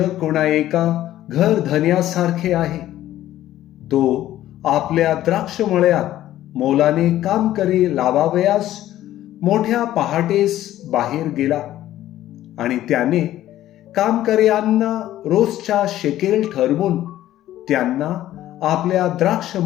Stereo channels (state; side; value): quieter; right; 13.5 dB